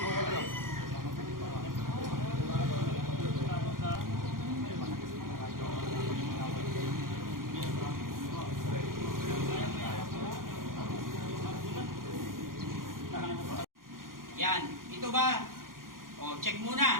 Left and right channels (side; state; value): left; late; 0.91 ms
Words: Yan, ito ba? O, check